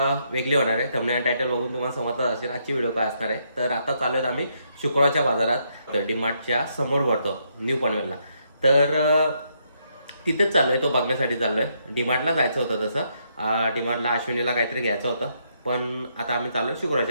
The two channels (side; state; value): both; inverted; correlation -0.75